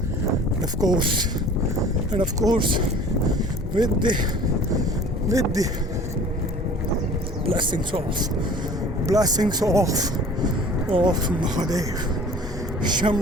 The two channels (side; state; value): both; normal; correlation 0.46